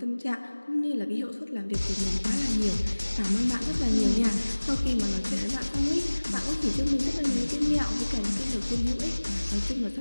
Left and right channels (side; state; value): both; inverted; correlation -1.00